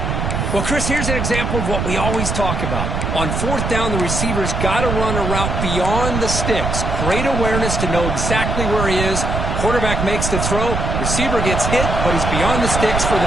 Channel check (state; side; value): noise; right; rumble, 2 dB below the sound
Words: Well, Chris, here's an example of what we always talk about. On 4th down, the receiver's got to run a route beyond the sticks. Great awareness to know exactly where he is. Quarterback makes the throw. Receiver gets hit, but he's beyond the sticks for